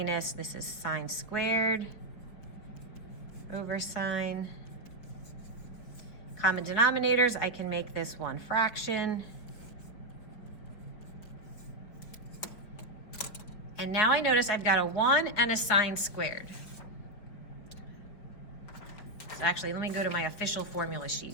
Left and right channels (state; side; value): late; right; 4.5 ms